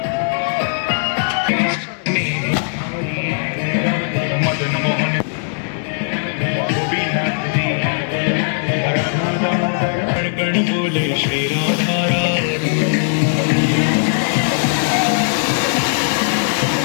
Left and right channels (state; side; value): silent; right; digital silence